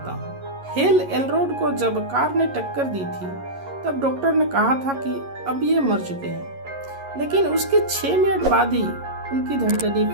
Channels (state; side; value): late; left; 11 ms